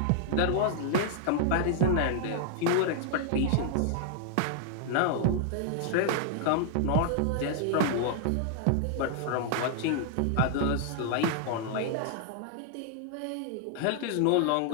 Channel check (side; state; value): both; different; correlation 0.00